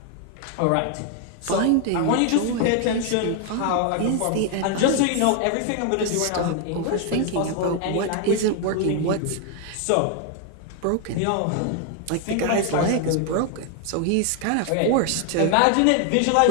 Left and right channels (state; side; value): different; both; correlation 0.00